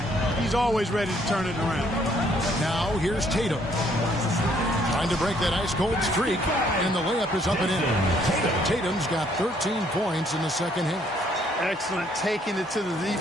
he's always ready to turn it around. Now here's Tatum. Trying to break that ice-cold streak, and the layup is up and in. Tatum's got 13 points in the second half. Excellent taking it to the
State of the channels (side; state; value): both; normal; correlation 0.66